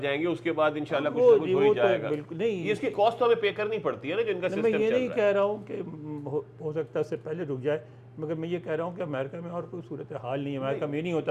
گے، اس کے بعد انشاءاللہ کچھ نہ کچھ ہو ہی جائے گا. بالکل نہیں، یہ اس کی کاسٹ ہمیں پے کرنی پڑتی ہے نا جن کا سسٹم چل رہا ہے. میں یہ نہیں کہہ رہا ہوں کہ ہو سکتا ہے اس سے پہلے رک جائے، مگر میں یہ کہہ رہا ہوں کہ امریکہ میں اور کوئی صورتحال نہیں ہے. امریکہ میں یہ نہیں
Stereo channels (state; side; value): identical; both; correlation 1.00